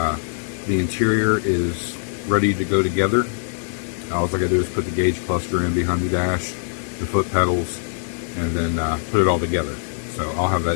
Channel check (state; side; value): silent; right; 61 dB below the other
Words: The interior is ready to go together. All I gotta do is put the gauge cluster in behind the dash, the foot pedals, and then put it all together. So I'll have